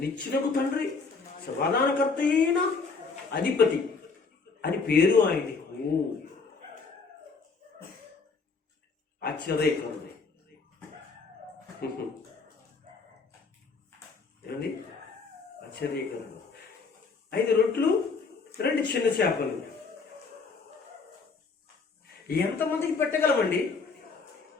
నిత్యులకు తండ్రి, సమాధానకర్త అయిన అధిపతి అని పేరు ఆయనకు. ఆశ్చర్యకరుడు ఏమండి? ఆశ్చర్యకరుడు. 5 రొట్లు 2 చిన్న చేపలు ఎంతమందికి పెట్టగలమండి?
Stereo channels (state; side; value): quieter; right; 4.6 dB